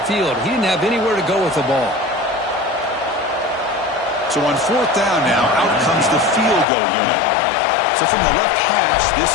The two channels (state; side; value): drops out; right; at 6.7 s